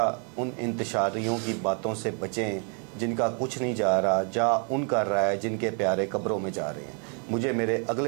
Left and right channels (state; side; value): quieter; left; 39.7 dB